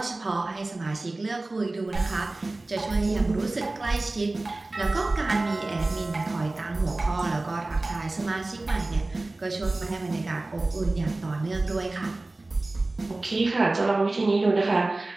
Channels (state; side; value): quieter; left; 3.0 dB